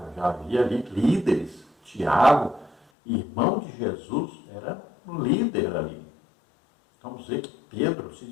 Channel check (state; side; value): drops out; right; at 2.8 s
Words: já havia ali líderes. Tiago, irmão de Jesus, era um líder ali. Então, vamos ver que Pedro se